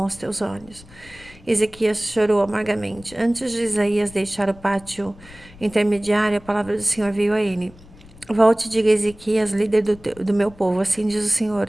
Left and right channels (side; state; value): left; noise; rumble, 22 dB below the sound